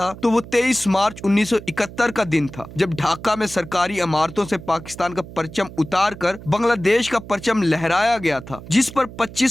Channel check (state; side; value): noise; right; hum, 15 dB below the sound